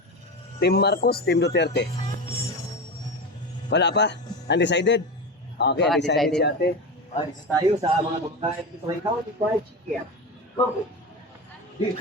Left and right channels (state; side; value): normal; both; correlation 0.22